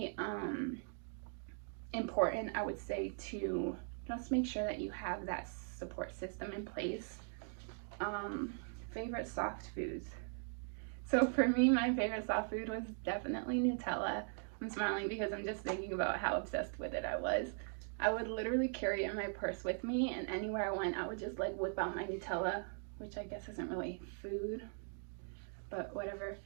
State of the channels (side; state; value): left; silent; 51 dB below the other